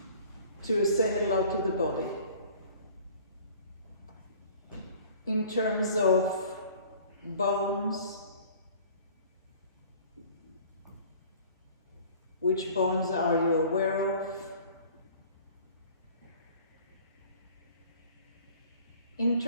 to say hello to the body. In terms of bones, which bones are you aware of? In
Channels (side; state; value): both; inverted; correlation -0.49